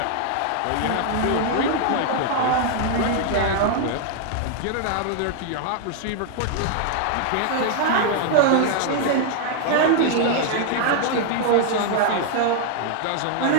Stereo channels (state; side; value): different; both; correlation 0.00